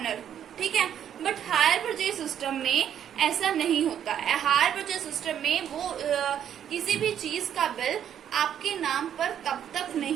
ठीक है, बट हायर परचेज सिस्टम में ऐसा नहीं होता है। हायर परचेज सिस्टम में वो किसी भी चीज का बिल आपके नाम पर तब तक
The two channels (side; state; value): left; quieter; 9.6 dB